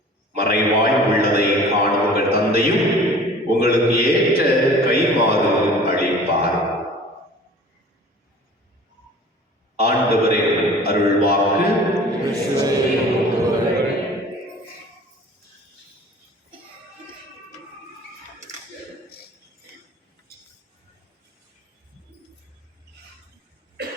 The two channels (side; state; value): both; normal; correlation 0.45